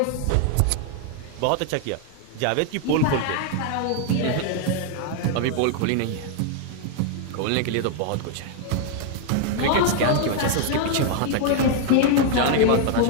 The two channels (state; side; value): different; both; correlation 0.00